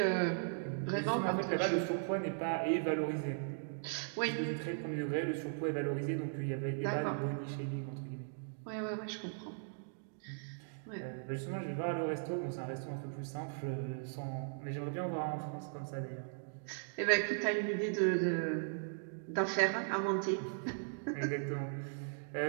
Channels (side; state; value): left; silent; digital silence